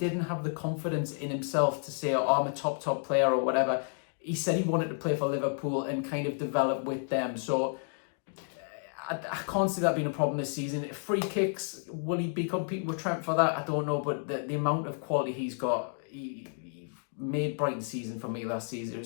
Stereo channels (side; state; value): right; silent; 57 dB below the other